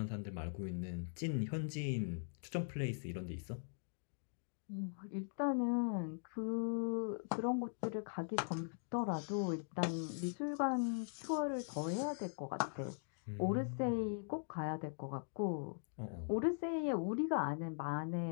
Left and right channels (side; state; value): right; silent; digital silence